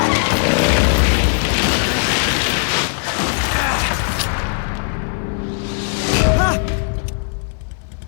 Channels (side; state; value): right; silent; 58 dB below the other